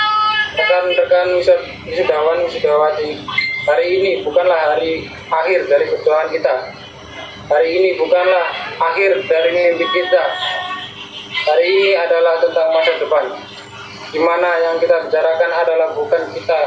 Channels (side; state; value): both; identical; correlation 1.00